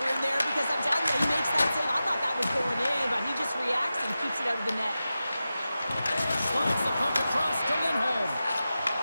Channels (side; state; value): both; inverted; correlation -0.93